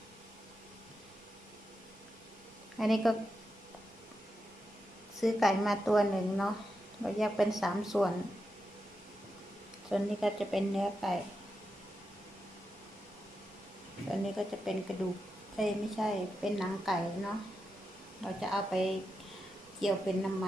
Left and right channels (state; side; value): normal; both; correlation 0.87